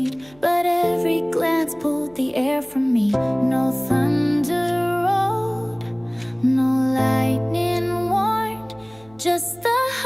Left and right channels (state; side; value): noise; right; hum, 27 dB below the sound